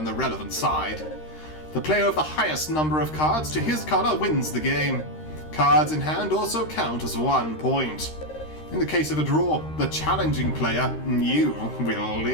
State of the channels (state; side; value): late; right; 13 ms